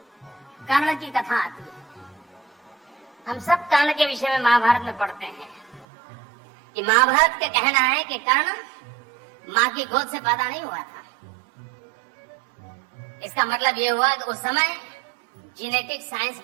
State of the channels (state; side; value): drops out; left; at 5.9 s